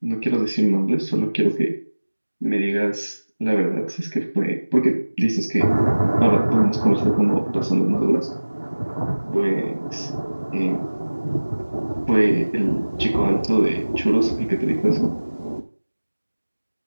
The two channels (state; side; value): inverted; both; correlation -1.00